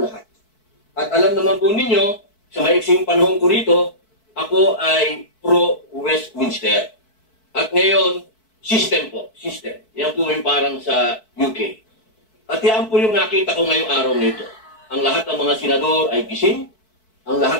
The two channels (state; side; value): late; right; 4.6 ms